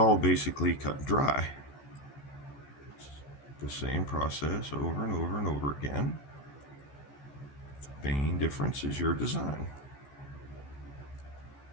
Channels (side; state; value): right; late; 14 ms